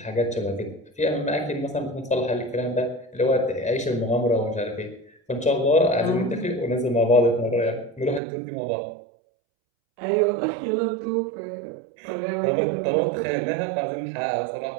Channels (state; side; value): drops out; left; at 8.2 s